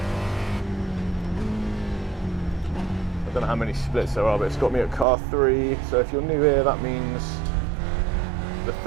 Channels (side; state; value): left; drops out; at 5.1 s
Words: I don't know how many splits there are, but it's got me at car 3. So if you're new here, that means the